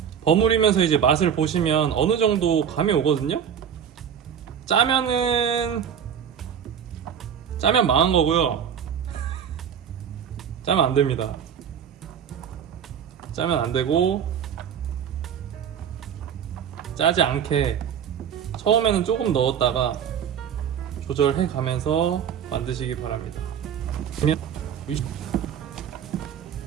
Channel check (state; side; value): quieter; left; 8.3 dB